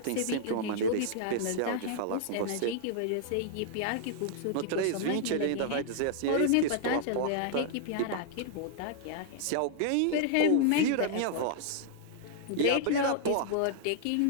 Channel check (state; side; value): different; both; correlation -0.01